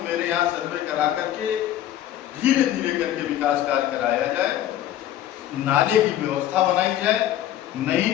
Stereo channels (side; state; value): right; quieter; 12.1 dB